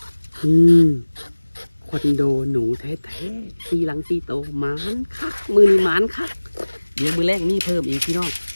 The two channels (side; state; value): both; inverted; correlation -1.00